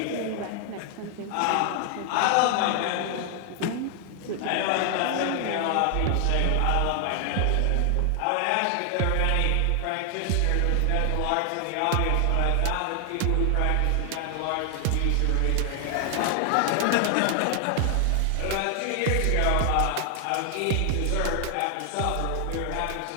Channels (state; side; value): different; both; correlation 0.00